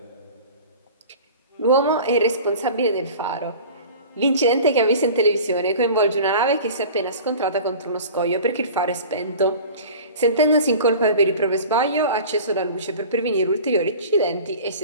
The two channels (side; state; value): both; inverted; correlation -0.39